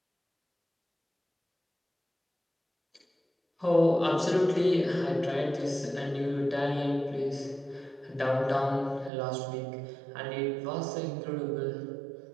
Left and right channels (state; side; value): drops out; left; at 9.1 s